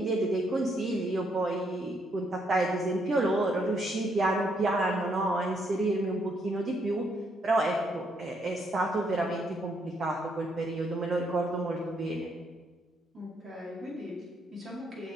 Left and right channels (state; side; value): normal; both; correlation 0.74